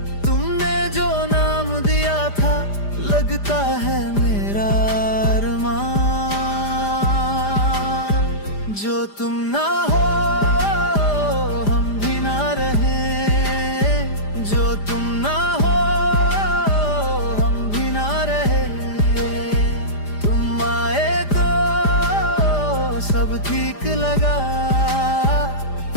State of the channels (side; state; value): right; late; 5.0 ms